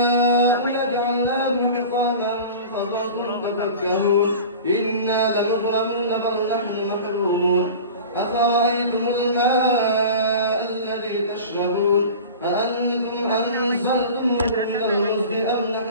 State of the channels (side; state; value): both; inverted; correlation -0.36